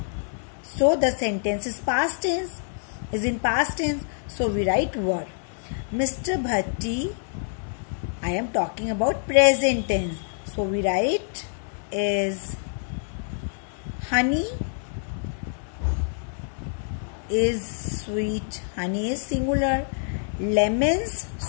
So, the sentence is past tense. Is in past tense. So, we write were. Mr. Bhatti, I am talking about present tense. So, we write is. Honey is sweet. Honey is singular. Lemons,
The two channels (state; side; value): silent; right; 61 dB below the other